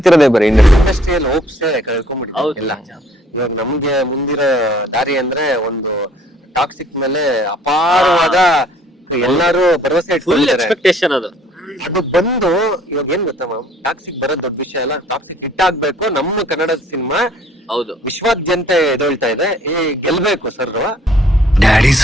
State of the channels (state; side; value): normal; both; correlation 0.59